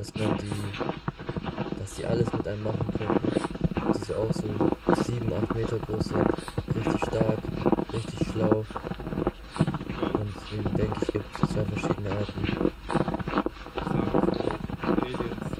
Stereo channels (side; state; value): both; identical; correlation 1.00